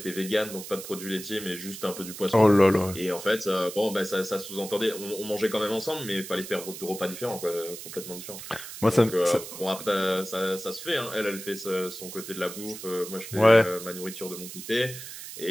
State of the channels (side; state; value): right; noise; hiss, 11 dB below the sound